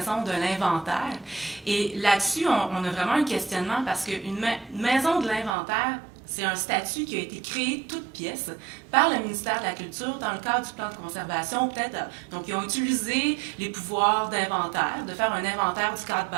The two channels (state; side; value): drops out; left; at 5.5 s